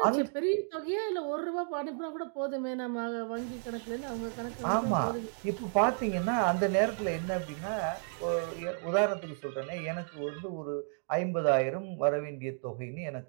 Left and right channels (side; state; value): left; silent; 56 dB below the other